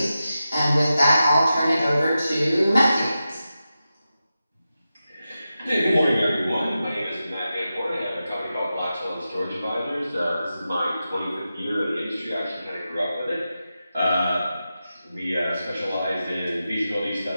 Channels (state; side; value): inverted; both; correlation -0.91